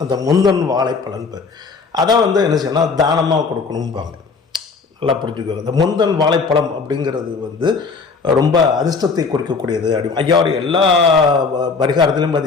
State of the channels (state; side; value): quieter; right; 4.6 dB